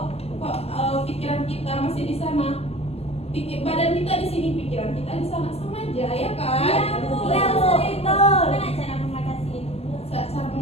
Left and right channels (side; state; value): right; late; 0.29 ms